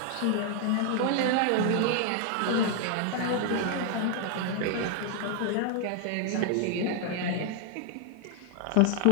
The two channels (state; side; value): different; both; correlation 0.00